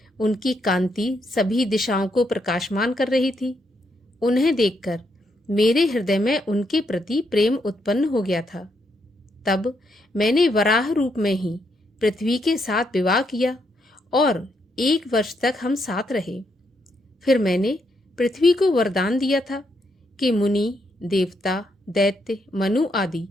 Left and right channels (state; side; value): normal; both; correlation 0.78